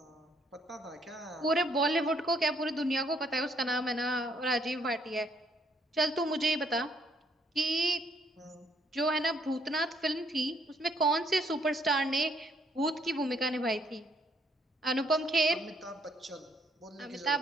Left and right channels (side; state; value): both; normal; correlation 0.68